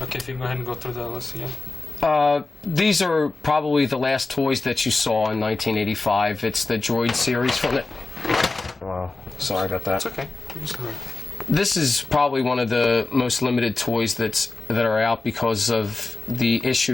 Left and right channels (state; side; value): quieter; right; 3.5 dB